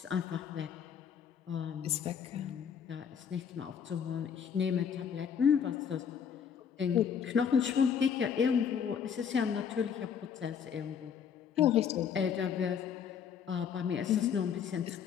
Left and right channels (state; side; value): quieter; right; 7.5 dB